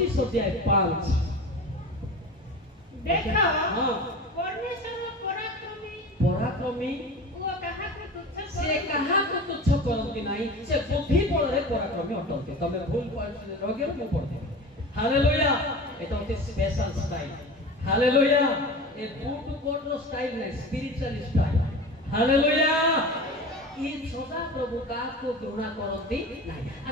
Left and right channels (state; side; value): normal; both; correlation 0.33